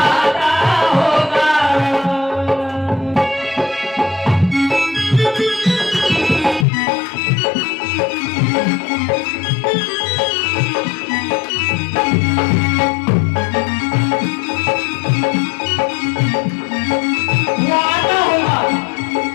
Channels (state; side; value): drops out; right; at 6.7 s